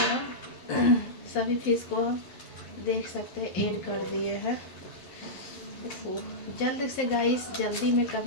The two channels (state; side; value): late; right; 11 ms